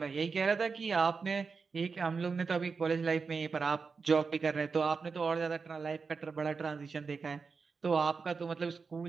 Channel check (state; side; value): quieter; left; 5.0 dB